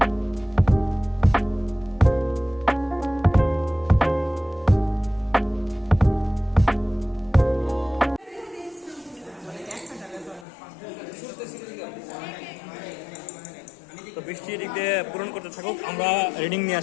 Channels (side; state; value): right; drops out; at 10.5 s